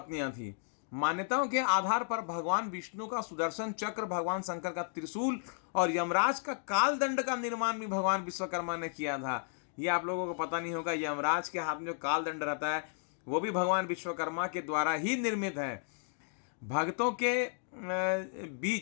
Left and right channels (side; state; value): right; silent; digital silence